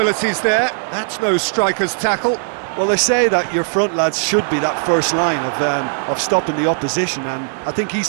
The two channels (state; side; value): silent; left; 57 dB below the other